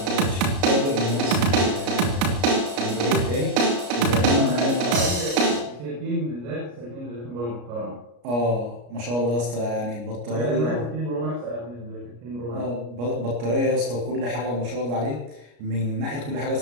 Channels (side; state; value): left; late; 33 ms